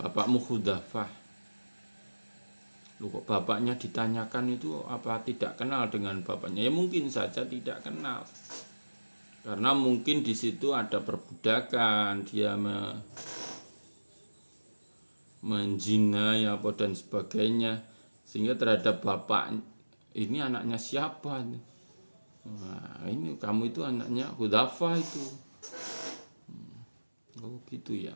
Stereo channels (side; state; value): both; inverted; correlation -1.00